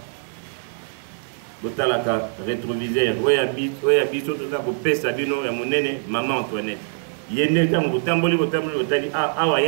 ayez rétroviseur. Oya biso tout ça coupé sa bino ya monene maman Antoinette. Yende tam botamboli otali awa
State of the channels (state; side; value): silent; left; digital silence